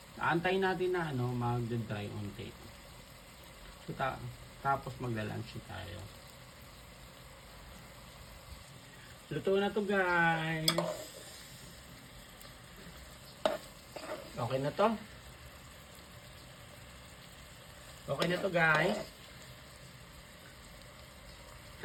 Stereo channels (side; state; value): both; identical; correlation 1.00